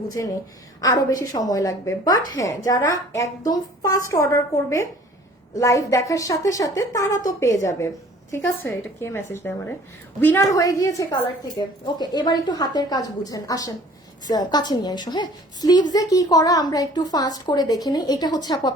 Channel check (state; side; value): normal; both; correlation 0.51